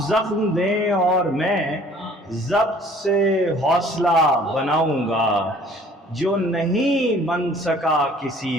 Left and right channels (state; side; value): normal; both; correlation 0.54